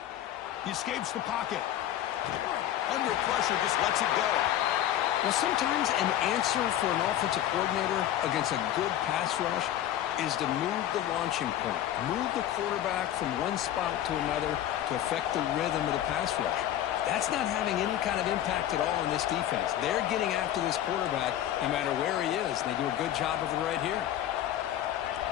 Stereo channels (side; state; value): right; quieter; 12.0 dB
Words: He escapes the pocket. Under pressure, just lets it go. Well, sometimes an answer for an offensive coordinator against a good pass rush is to move the launching point, move the quarterback from one spot to another to affect the rhythm of the pass rush. That's not having any kind of impact at all on this defense. They're getting after this quarterback no matter where he is, and they do a good job of it right here.